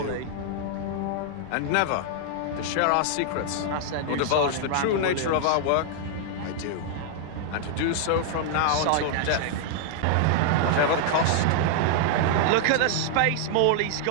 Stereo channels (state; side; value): different; both; correlation 0.00